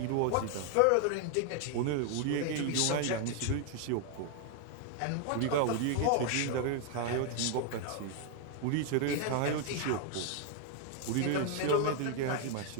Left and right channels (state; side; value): different; both; correlation 0.00